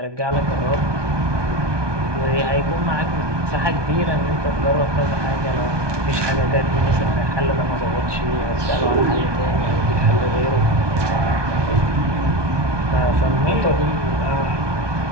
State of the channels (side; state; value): left; late; 1.2 ms